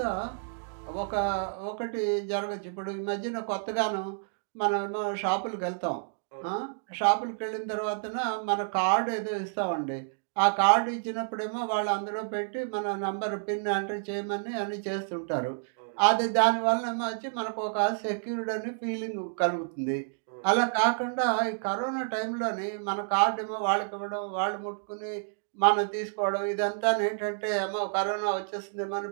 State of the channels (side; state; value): left; silent; digital silence